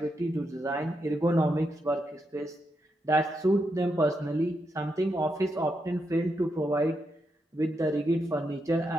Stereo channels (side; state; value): both; normal; correlation 0.83